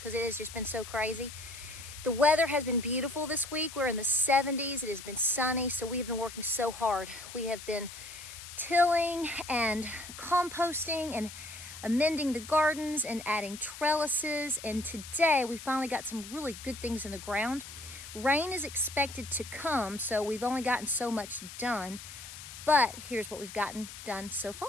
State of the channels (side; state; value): left; noise; hiss, 13 dB below the sound